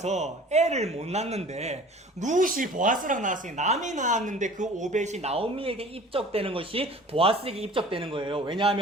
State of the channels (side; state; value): both; normal; correlation 0.45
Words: 애를 못 낳는데 룻이 보아스랑 낳았으니 남이 낳았는데 그 오벳이 나오미에게 입적되는 것이 보아스에게 입적되는 거예요.